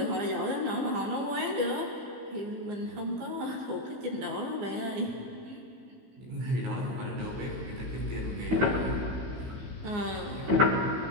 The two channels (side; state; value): left; late; 16 ms